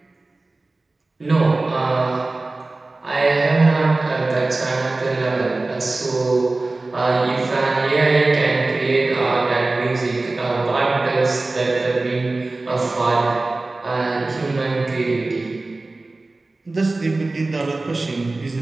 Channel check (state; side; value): quieter; left; 3.2 dB